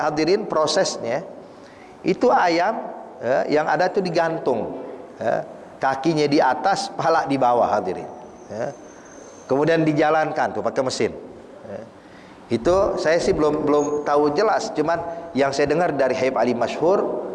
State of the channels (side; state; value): both; identical; correlation 1.00